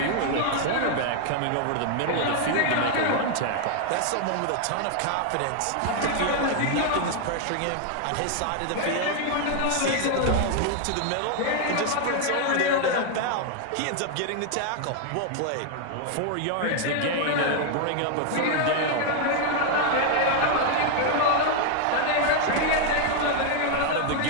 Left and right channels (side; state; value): both; different; correlation 0.00